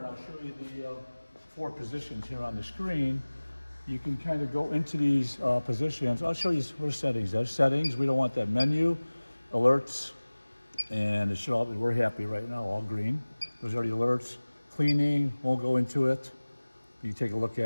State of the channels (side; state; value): both; inverted; correlation -1.00